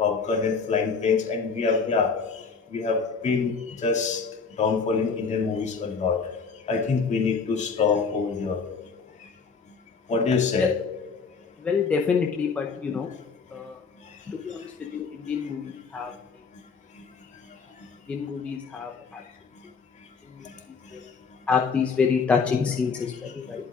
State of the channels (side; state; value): right; quieter; 5.2 dB